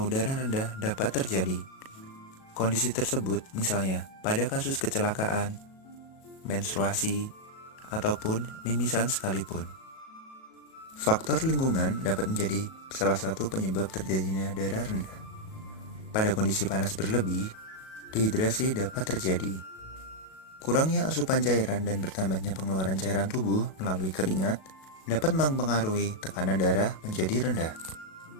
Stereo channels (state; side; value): late; right; 37 ms